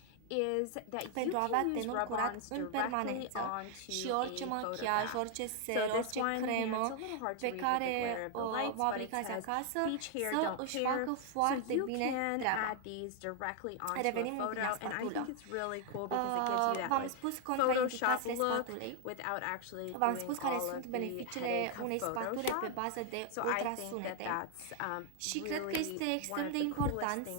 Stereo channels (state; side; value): different; both; correlation 0.00